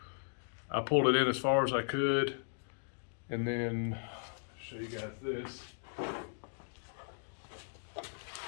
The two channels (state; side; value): silent; right; digital silence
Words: I pulled it in as far as I could, and then I'll show you guys this.